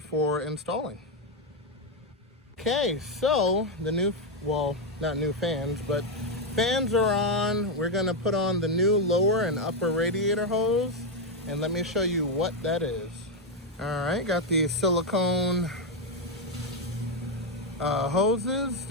installing. Okay, so the new, well, not new fans, but fans are on. We're gonna put on the new lower and upper radiator hose, and let me show you what that is. All right, got the silicone hoses.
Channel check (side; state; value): both; normal; correlation 0.04